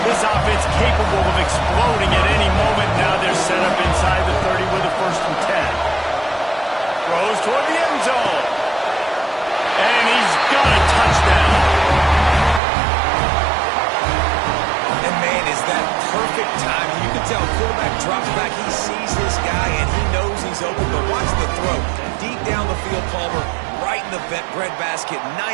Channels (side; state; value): left; drops out; at 12.6 s